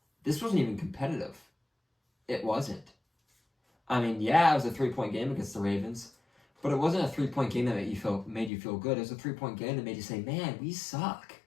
This wasn't even competitive. It wasn't. I mean, yeah, it was a 3-point game against the Ravens, but it wasn't a 3-point game that made you feel good. It was a 3-point game that made you say, man, we suck.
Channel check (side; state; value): right; drops out; at 8.5 s